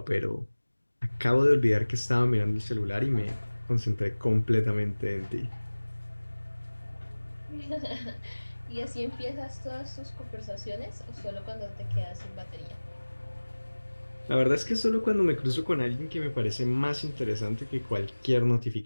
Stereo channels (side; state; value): both; inverted; correlation -1.00